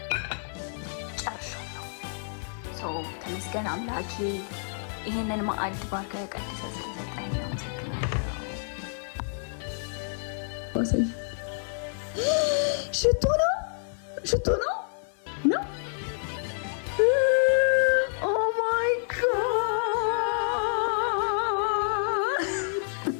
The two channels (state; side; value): silent; right; 58 dB below the other